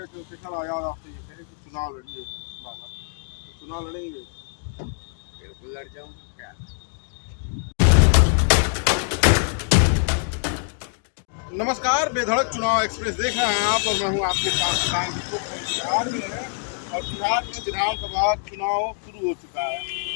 चंद्रशेखर आजाद आपसे ये कहे कि चुनाव लड़िए बाबा, तो चुनाव लड़ेंगे? बिल्कुल लड़ जाऊंगा। क्या नमस्कार, बेधड़क चुनाव एक्सप्रेस देख रहे हैं आप, और मैं हूं आपके साथ किसान की। बिहार में है और बिहार में विधानसभा चुनाव शुरू हो चुका है।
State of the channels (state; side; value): silent; right; 62 dB below the other